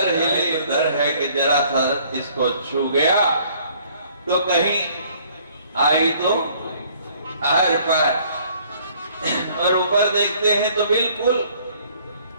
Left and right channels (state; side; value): inverted; both; correlation -0.59